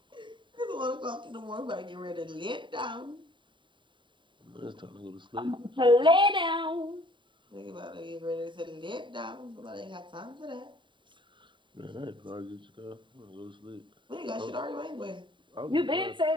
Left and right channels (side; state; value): left; late; 0.23 ms